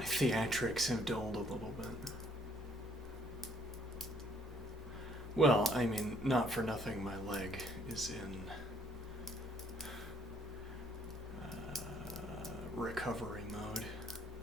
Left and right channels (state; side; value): normal; both; correlation 0.64